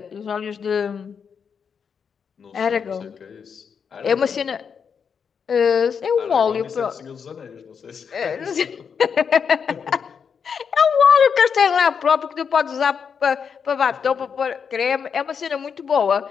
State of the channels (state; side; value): quieter; right; 6.6 dB